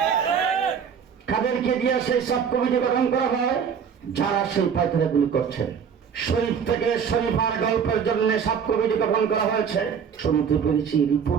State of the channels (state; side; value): quieter; left; 7.1 dB